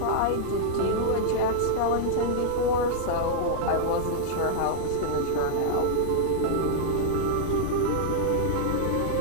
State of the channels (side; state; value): both; different; correlation -0.01